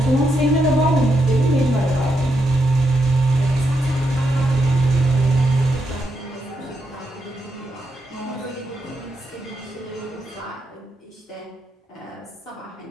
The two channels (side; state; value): both; normal; correlation 0.81